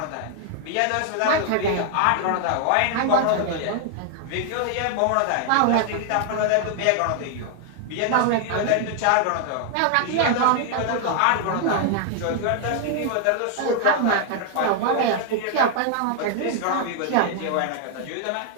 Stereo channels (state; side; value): different; both; correlation 0.00